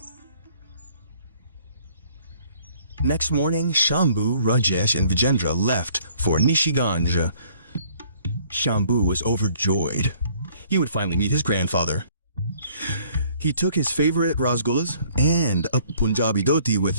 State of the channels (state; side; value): inverted; both; correlation -0.59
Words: Next morning, Shambhu, Rajesh, and Vijendra left for Nishiganj. Shambhu was overjoyed. He would finally meet his grandfather. He took his favorite rasgullas and a Punjabi dhoti with